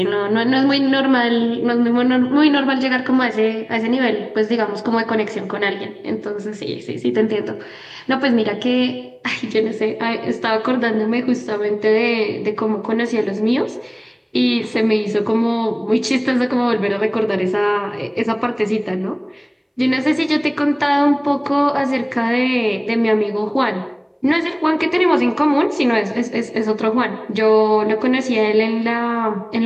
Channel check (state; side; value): identical; both; correlation 1.00